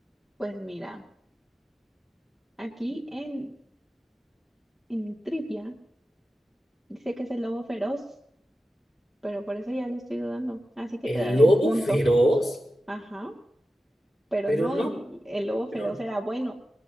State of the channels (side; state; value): both; normal; correlation 0.93